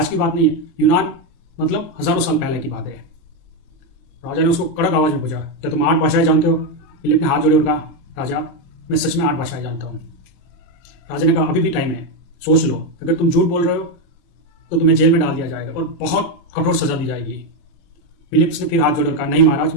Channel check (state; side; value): late; right; 23 ms